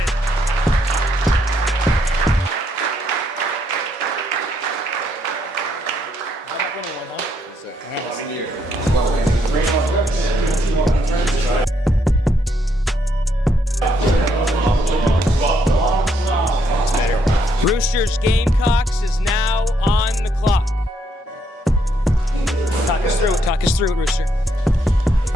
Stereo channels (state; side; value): normal; both; correlation 0.74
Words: Roosters Gamecocks is now on the clock. Talk us through it, Rooster.